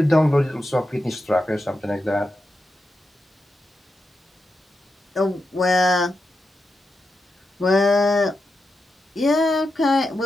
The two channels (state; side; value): normal; both; correlation 0.88